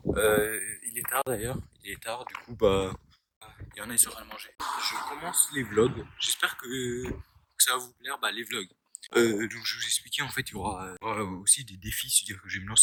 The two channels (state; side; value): identical; both; correlation 1.00